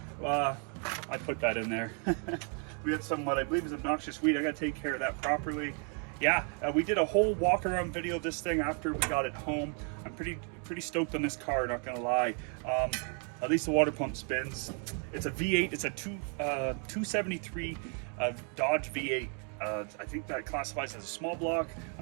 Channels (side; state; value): left; quieter; 39.8 dB